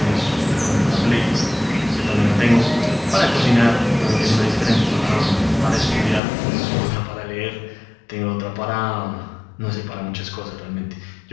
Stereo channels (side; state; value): right; drops out; at 6.2 s